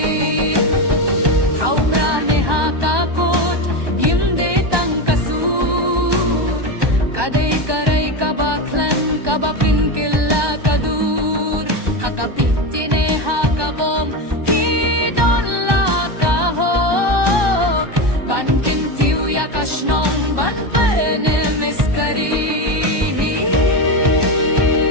Ha uprane ha kakot yimde tang kasur kadai karai kabaklan kabapin killa kadur hakapitine hakabom hidon la kahok bankin tiu yakashnong ban pene miskari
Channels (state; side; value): late; left; 1.2 ms